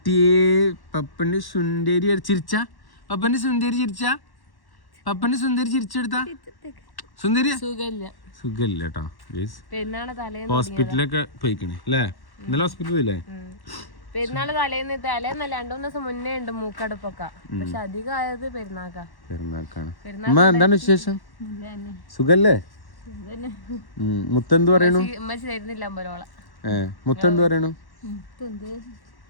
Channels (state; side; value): late; right; 1.1 ms